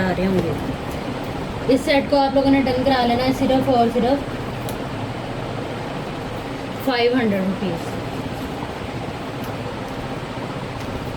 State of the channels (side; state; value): both; identical; correlation 1.00